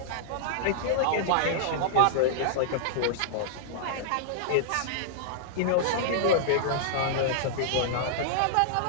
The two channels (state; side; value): different; both; correlation -0.02